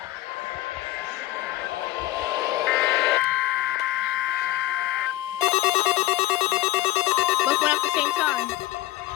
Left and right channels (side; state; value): right; quieter; 16.3 dB